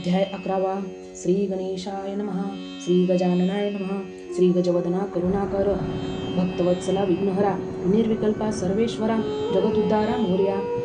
11. श्री गणेशाय नमः. श्री गजाननाय नमः. श्री गजवदना करुणाकर भक्तवत्सला विघ्नहरा निर्विकल्पा सर्वेश्वरा जगदुद्धारा मोर्या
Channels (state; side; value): identical; both; correlation 1.00